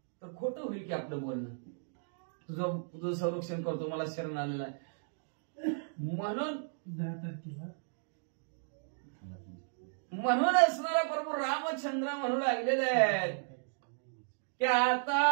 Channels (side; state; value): left; silent; digital silence